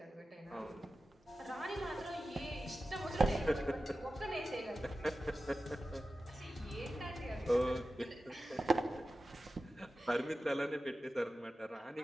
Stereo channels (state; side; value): normal; both; correlation 0.94